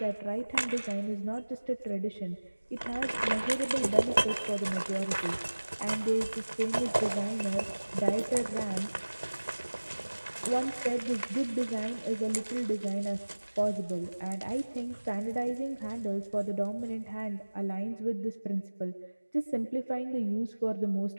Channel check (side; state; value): both; inverted; correlation -1.00